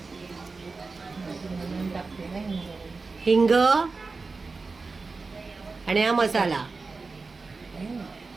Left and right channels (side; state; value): left; quieter; 4.1 dB